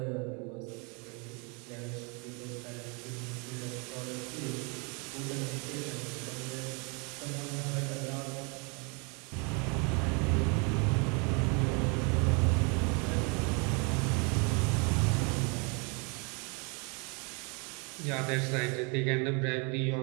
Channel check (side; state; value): left; quieter; 33.2 dB